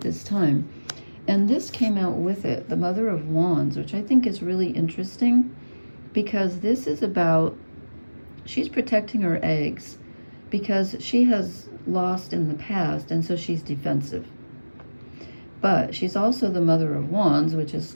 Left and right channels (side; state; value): both; inverted; correlation -1.00